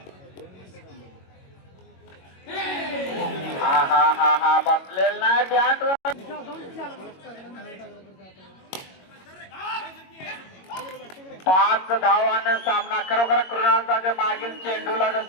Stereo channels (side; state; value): right; late; 22 ms